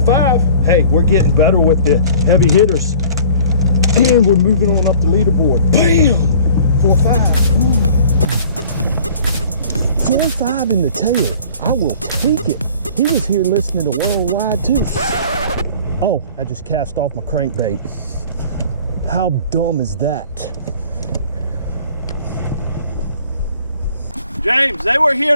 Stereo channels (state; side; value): inverted; both; correlation -0.48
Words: 5. Hey, we're getting better with the heavy hitters. And we're moving on up the leaderboard. Bam! 4-5. 4-5 in the tail. I will take it. He was here listening to Worldwide too. Oh, I just cast off my crankbait. How dumb is that? James, they were here